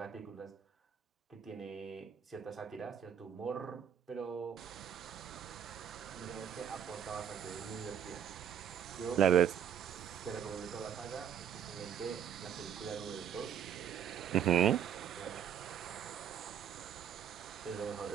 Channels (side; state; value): left; quieter; 8.8 dB